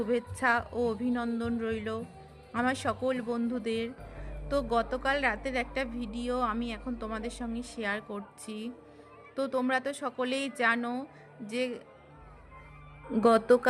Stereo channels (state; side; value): identical; both; correlation 1.00